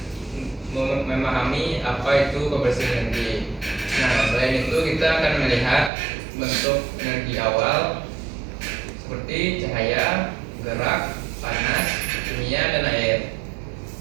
memahami apa itu konversi energi. Nah, selain itu kita akan melihat bentuk energi awal seperti cahaya, gerak, panas, kimia, dan air.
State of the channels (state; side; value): drops out; left; at 5.9 s